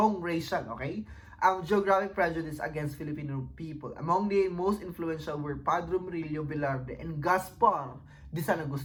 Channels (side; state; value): both; identical; correlation 1.00